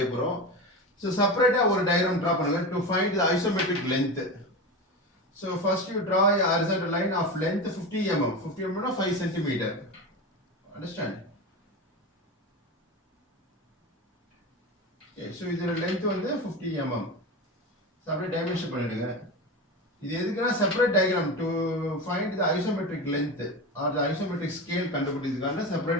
போறோம். So separate ஒரு diagram draw பண்ணுங்க to find the isometric length. So first you draw a horizontal line of length 50 mm. 50 mm na 5 cm. Understand? Okay, so இதோட length வந்து 50 mm. So அப்படியே dimension பண்ணிடுங்க. இது எதுக்குன்னா separate diagram to find the isometric length or the isometric scale கண்டுபிடிக்கிறதுக்கான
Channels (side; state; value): both; normal; correlation 0.23